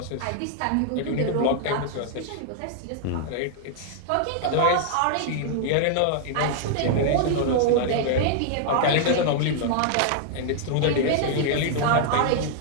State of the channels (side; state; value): both; different; correlation -0.01